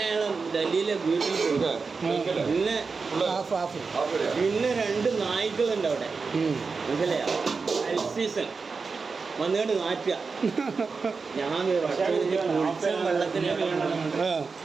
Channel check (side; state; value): left; quieter; 4.7 dB